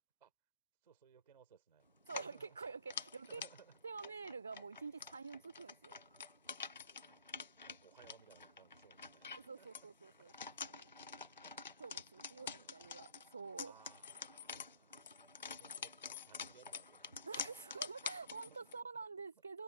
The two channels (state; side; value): inverted; both; correlation -0.61